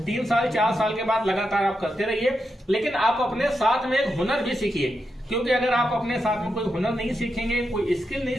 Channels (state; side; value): normal; both; correlation 0.86